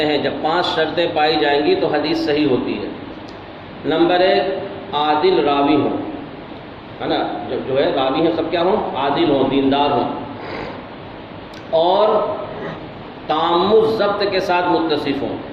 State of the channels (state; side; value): identical; both; correlation 1.00